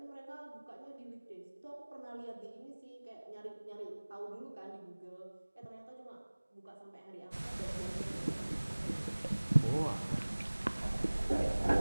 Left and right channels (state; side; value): inverted; both; correlation -1.00